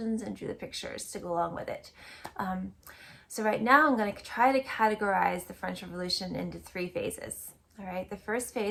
and drew the pictures to go along with it. So right now I'm going to try to categorize the French Revolution into 3 phases. All right, the first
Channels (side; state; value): both; identical; correlation 1.00